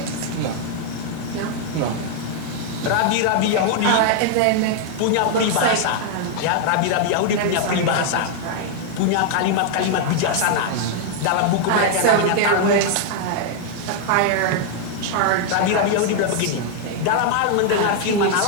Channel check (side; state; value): both; different; correlation 0.00